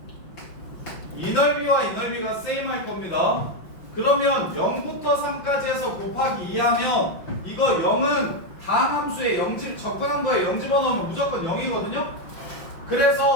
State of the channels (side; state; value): right; late; 5.7 ms